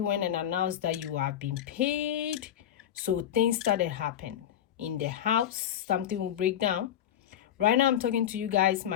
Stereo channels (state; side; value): quieter; right; 10.6 dB